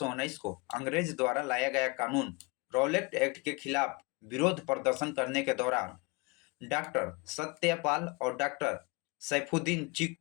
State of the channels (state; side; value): quieter; right; 27.4 dB